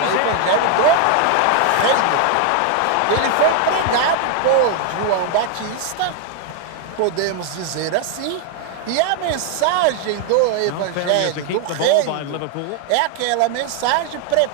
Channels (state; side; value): different; both; correlation 0.00